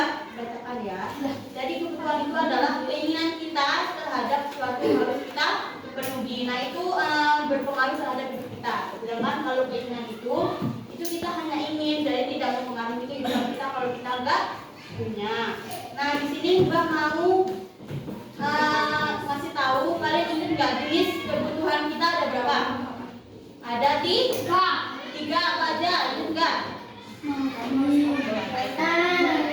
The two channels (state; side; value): identical; both; correlation 1.00